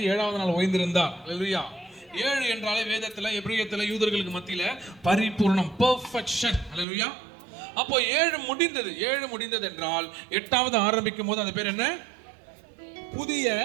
7வது நாள் ஓய்ந்திருந்தார். ஹல்லேலூயா. 7 என்றாலே வேதத்துல, எபிரேயத்துல, யூதர்களுக்கு மத்தியில பரிபூர்ணம், பெர்ஃபெக்ஷன். ஹல்லேலூயா. அப்போ 7 முடிந்தது. 7 முடிந்தது என்றால் 8வது ஆரம்பிக்கும் போது அது பேர் என்ன? புதிய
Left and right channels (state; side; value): drops out; left; at 6.9 s